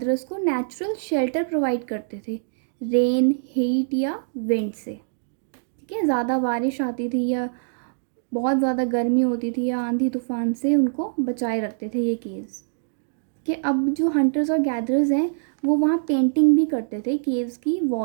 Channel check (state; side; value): silent; left; digital silence